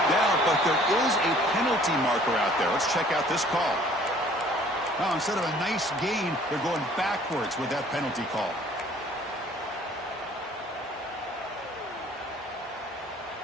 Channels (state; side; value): normal; both; correlation 0.55